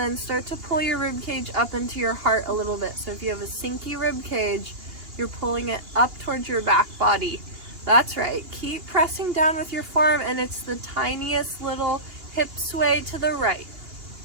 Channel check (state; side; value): late; left; 2.8 ms